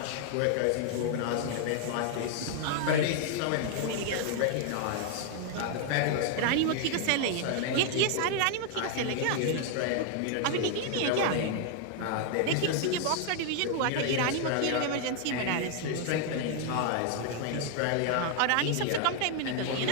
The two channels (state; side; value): different; both; correlation 0.00